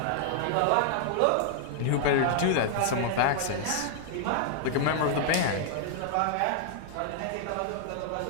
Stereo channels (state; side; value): different; both; correlation -0.01